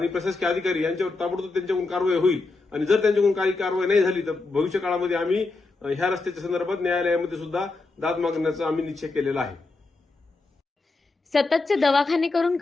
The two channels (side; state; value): right; quieter; 3.6 dB